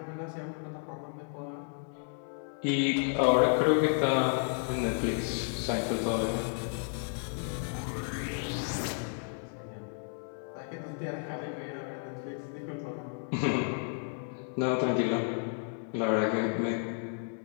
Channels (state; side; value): silent; right; 56 dB below the other